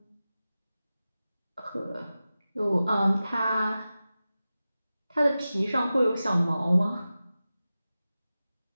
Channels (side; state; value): both; inverted; correlation -0.95